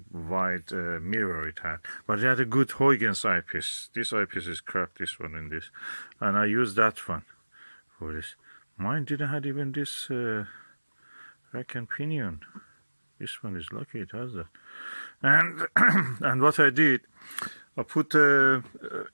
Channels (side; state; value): both; inverted; correlation -1.00